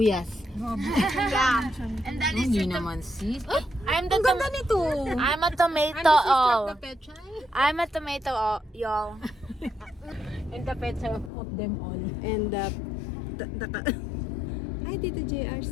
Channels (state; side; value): drops out; right; at 11.3 s